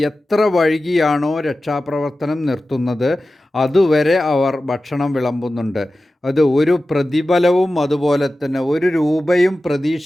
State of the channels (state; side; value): normal; both; correlation 0.95